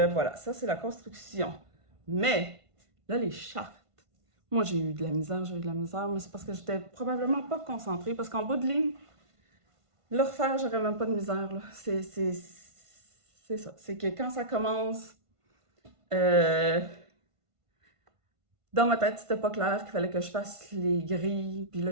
ça c'est la construction. Mais, là, les chartes. Moi, j'ai eu de la misère, mais c'est parce que j'étais probablement pas concentrée. Parce qu'en bout de ligne, le refaire, j'aurais même pas de misère. Là. C'est ça. C'est que quand ça commence, dans ma tête, c'était pas clair qu'il fallait que je fasse les grilles. Puis là,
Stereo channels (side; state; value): left; late; 1.5 ms